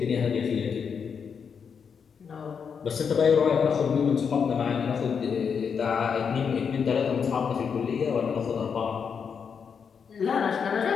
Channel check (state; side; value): quieter; right; 6.5 dB